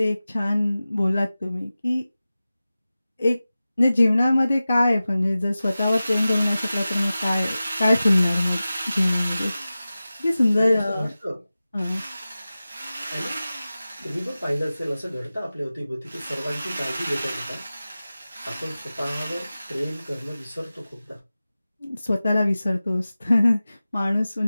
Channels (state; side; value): inverted; both; correlation -0.96